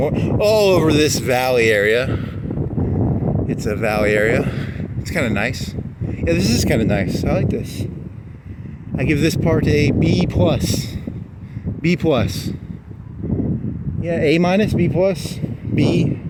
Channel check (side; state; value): both; identical; correlation 1.00